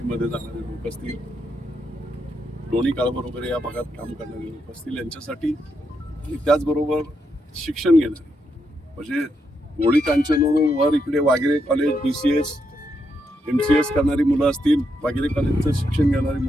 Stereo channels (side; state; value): both; normal; correlation 0.81